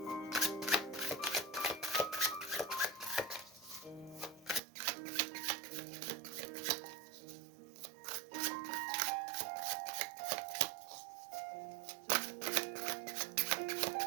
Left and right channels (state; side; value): drops out; left; at 4.6 s